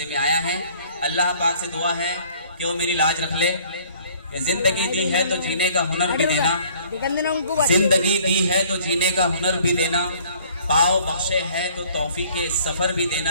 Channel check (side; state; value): both; inverted; correlation -0.56